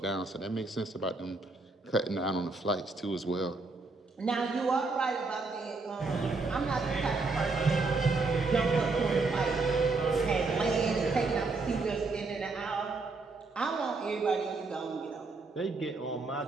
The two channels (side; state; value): left; quieter; 3.7 dB